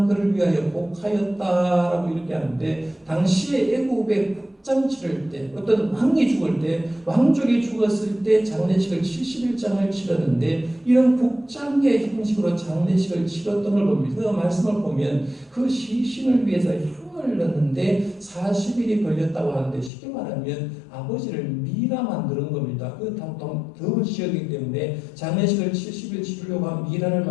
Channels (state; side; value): drops out; right; at 19.9 s